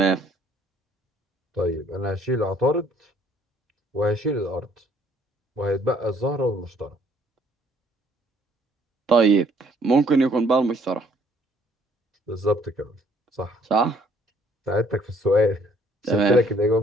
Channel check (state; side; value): normal; both; correlation 0.62